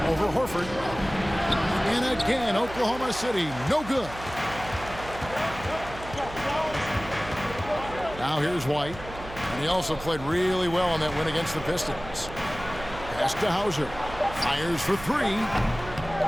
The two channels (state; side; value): noise; right; hum, 14 dB below the sound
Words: Over Horford. And again, Oklahoma City, no good. Now here's White. And he also played really well on that win against the Pistons. Pass to Hauser. Fires for 3.